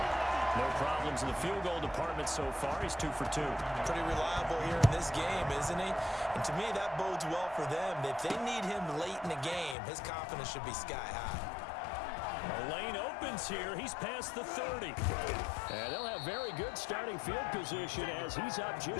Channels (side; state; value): right; drops out; at 9.8 s